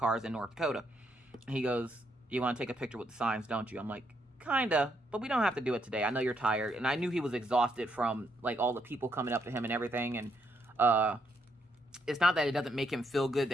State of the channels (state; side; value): normal; both; correlation 0.76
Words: in North Dakota. He goes, you want to take a picture with the signs, don't you? I'm like, kinda, but we don't have to do it today. I know you're tired. And I knew he was exhausted from like all the people coming up to him and everything. And it's not that it doesn't make him feel good